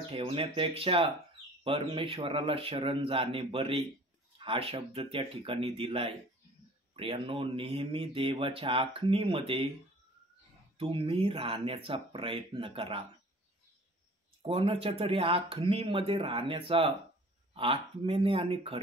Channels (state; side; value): normal; both; correlation 0.49